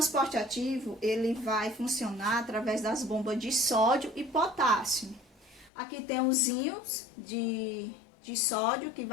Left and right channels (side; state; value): right; drops out; at 5.7 s